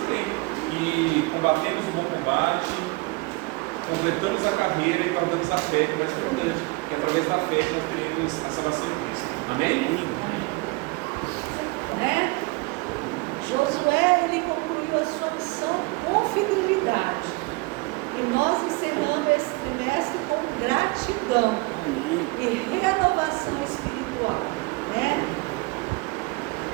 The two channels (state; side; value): quieter; left; 25.8 dB